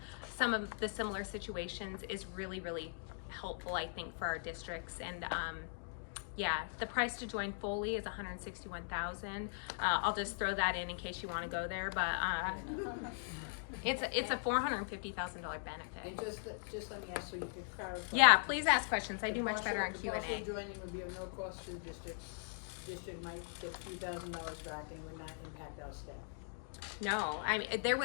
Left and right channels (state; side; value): silent; right; digital silence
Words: of the similar situations is really, really helpful, I think, for our districts. And yeah, the price to join fully is $161,000. I'll just throw that in case you want to go there, but it's a $450,000 benefit. And just let me ask so you can clarify. Yeah, please ask questions. I do much better on The Q&A. partial joining would be of no cost to the district. District might get a few $1,000s back and would not impact our staff. No, I mean